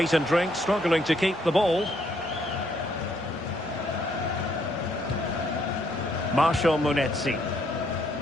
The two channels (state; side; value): normal; both; correlation 0.70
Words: and drink struggling to keep the ball. Marshall Munetsi.